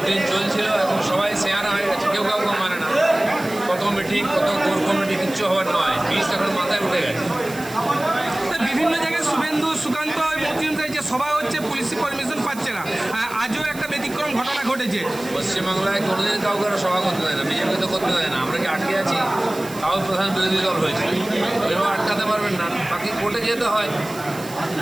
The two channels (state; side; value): noise; right; hiss, 16 dB below the sound